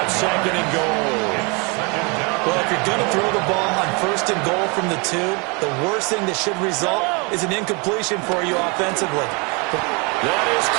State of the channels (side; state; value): left; quieter; 30.5 dB